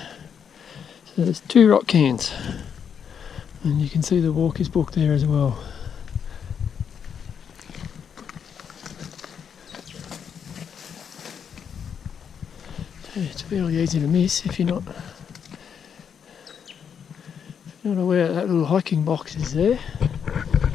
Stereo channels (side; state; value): right; quieter; 7.5 dB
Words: So there's 2 rock cairns, and you can see the walk is booked there as well. So it's fairly easy to miss if you're not aware that little hiking box is there,